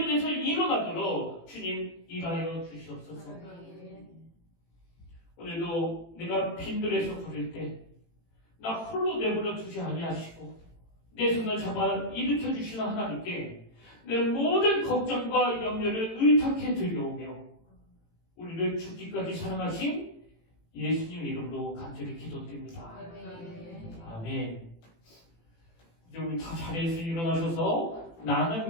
일어나도록 주님 일하여 주시옵소서. 오늘도 내가 빈들에서 걸을 때 나 홀로 내버려 두지 아니하시고 내 손을 잡아 일으켜 주시는 하나님께 내 모든 걱정과 염려를 의탁해 드려오며 우리를 죽기까지 사랑하신 예수님 이름으로 간절히 기도드립니다. 아멘. 이제 우리 다 자리에서 일어나셔서 나는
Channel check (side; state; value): right; late; 18 ms